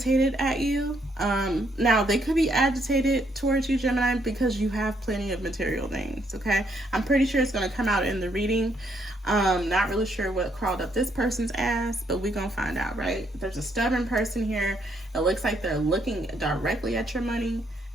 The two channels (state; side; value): normal; both; correlation 0.73